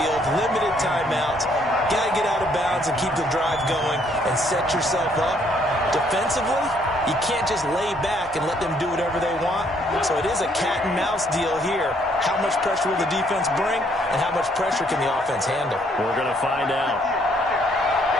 limited timeouts, got to get out of bounds and keep the drive going and set yourself up. Defensively, you can't just lay back and let them do whatever they want. So it is a cat and mouse deal here. How much pressure will the defense bring, and how much pressure can the offense handle? We're going to find out.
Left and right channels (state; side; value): normal; both; correlation 0.67